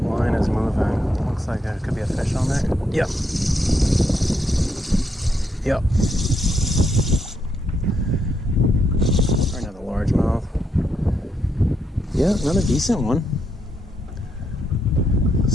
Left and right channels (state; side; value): normal; both; correlation 0.79